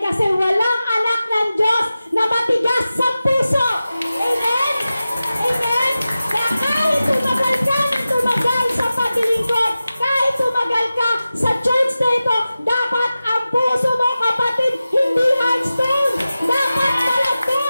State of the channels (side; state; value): both; inverted; correlation -0.95